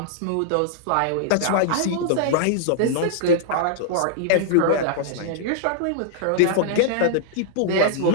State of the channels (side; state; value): both; different; correlation -0.01